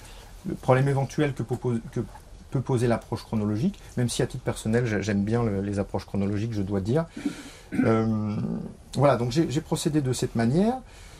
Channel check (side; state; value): both; identical; correlation 1.00